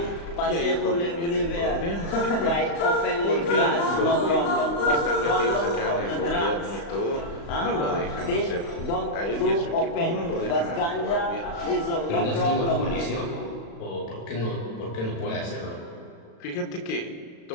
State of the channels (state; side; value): late; right; 35 ms